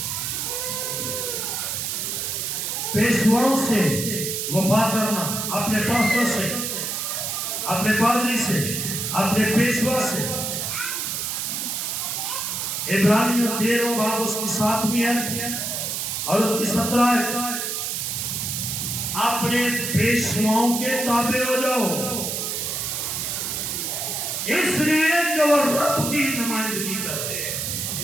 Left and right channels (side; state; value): right; noise; hiss, 2 dB below the sound